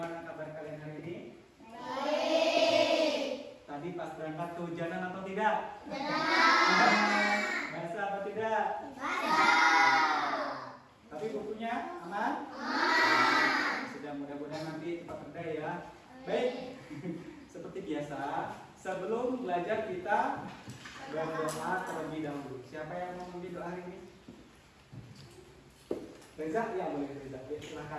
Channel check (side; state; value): both; identical; correlation 1.00